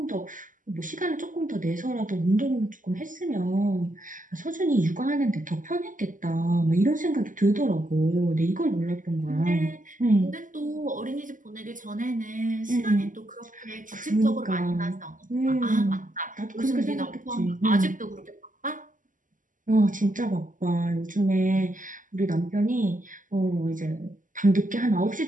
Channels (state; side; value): late; left; 0.38 ms